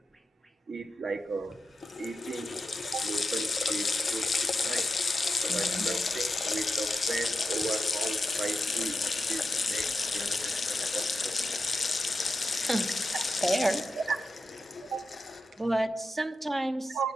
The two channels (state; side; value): normal; both; correlation 0.90